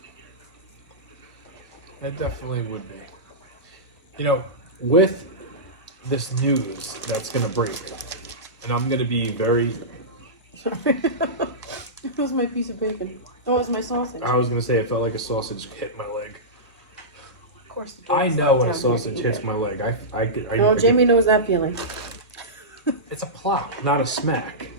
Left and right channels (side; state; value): both; normal; correlation -0.16